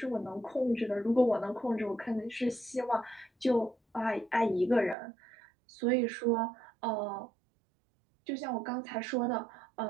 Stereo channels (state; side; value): drops out; left; at 5.0 s